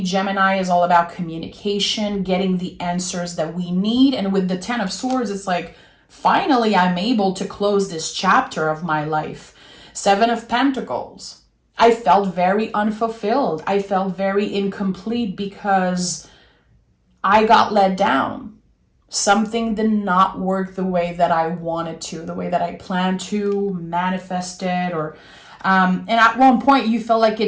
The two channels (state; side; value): identical; both; correlation 1.00